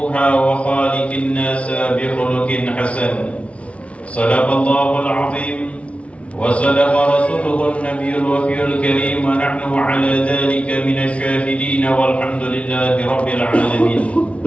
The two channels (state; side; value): late; right; 0.063 ms